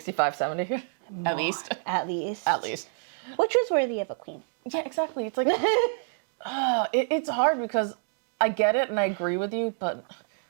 70? At least. At least. At least. Which was worthy of a queen. Yeah, exactly. It's like... it's hard because I get it and I agree with you, but...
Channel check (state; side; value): silent; left; digital silence